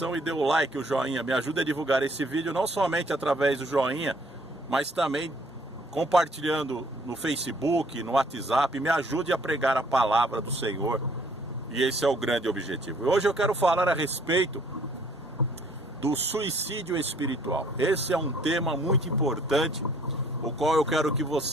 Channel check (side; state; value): both; normal; correlation 0.60